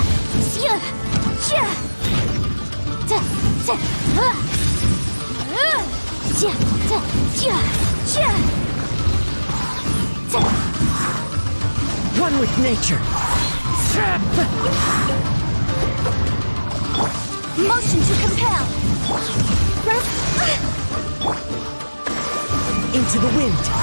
One with nature. Motion to compel! Into the wind.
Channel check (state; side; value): inverted; both; correlation -1.00